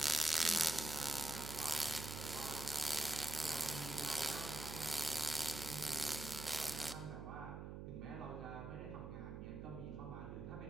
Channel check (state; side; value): noise; right; hum, 7 dB below the sound